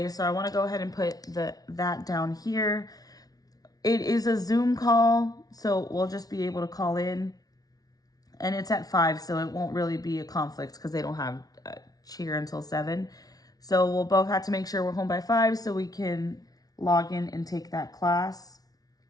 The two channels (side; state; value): right; late; 0.18 ms